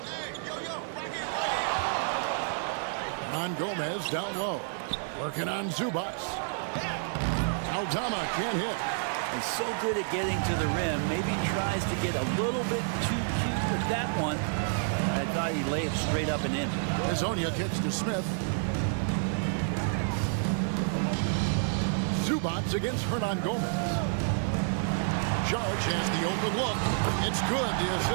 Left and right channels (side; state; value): left; silent; 58 dB below the other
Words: On Gomez down low. Working on Zubac. Aldama can't hit. He's so good at getting to the rim. Maybe tries to get a little bit too cute with that one. I thought he'd lay it straight up and in. Hazonia kicks to Smith. Zubac against Hernan Gomez. Saric has the open look. It's good. The